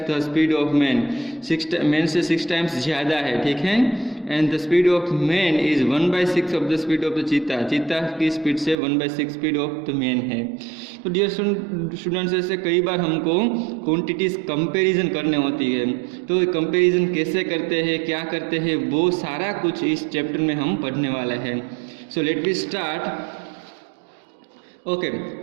the speed of man, man से 6 टाइम्स ज़्यादा है, ठीक है। And the speed of man is 1/6 of the speed of the चीता, चीता की स्पीड से 1/6 स्पीड ऑफ द मैन है। तो डियर स्टूडेंट्स, ऐसे कई बार हमको क्वांटिटीज़ कंपैरिजन करने होती है। तो कंपैरिजन कैसे करते हैं, क्या करते हैं, वो सारा कुछ इस चैप्टर में हम पढ़ने वाले हैं। So let we start. Okay,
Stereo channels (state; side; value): drops out; left; at 8.8 s